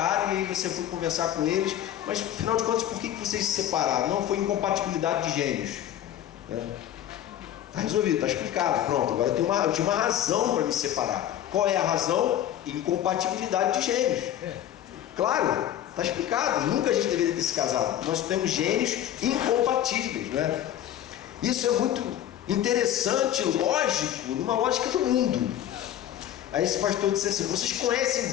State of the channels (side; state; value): right; quieter; 11.5 dB